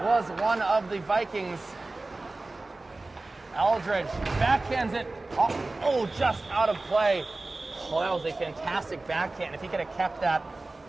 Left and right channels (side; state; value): left; quieter; 3.1 dB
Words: was one of the Vikings. Eldridge backhands it. Oh, just out of play. Oh, that was a fantastic backhand. If he could have kept that